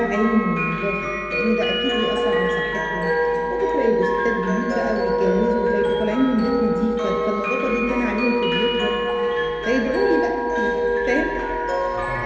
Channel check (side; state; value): both; identical; correlation 1.00